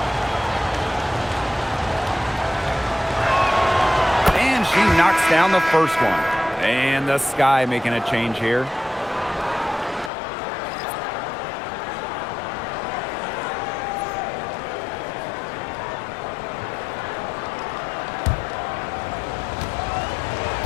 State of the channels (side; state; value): right; drops out; at 10.1 s